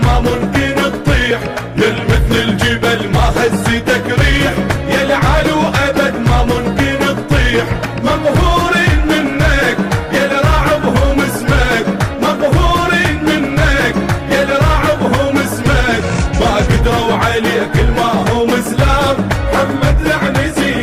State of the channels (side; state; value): both; identical; correlation 1.00